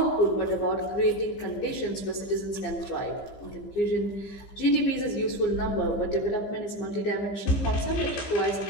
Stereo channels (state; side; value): late; right; 15 ms